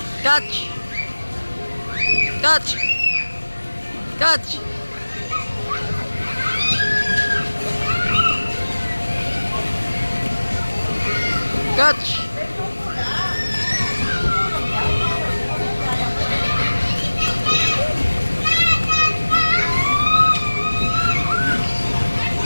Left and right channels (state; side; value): inverted; both; correlation -1.00